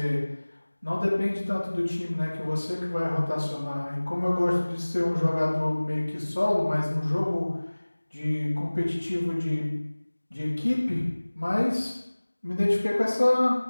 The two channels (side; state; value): both; inverted; correlation -1.00